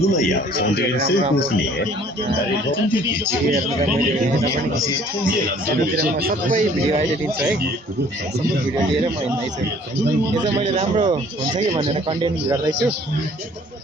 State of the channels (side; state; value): both; normal; correlation 0.55